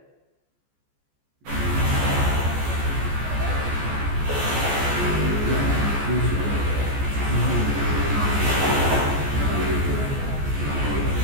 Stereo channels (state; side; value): late; left; 14 ms